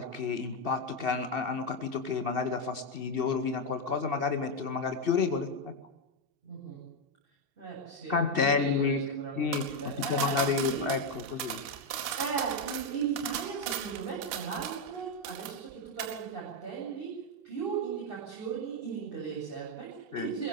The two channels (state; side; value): late; left; 2.7 ms